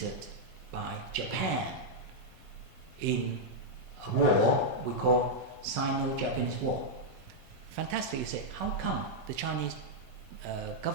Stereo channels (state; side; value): noise; left; rumble, 22 dB below the sound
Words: by Japan in a war we call Sino-Japanese War. Fantastic, you say, how come the Chinese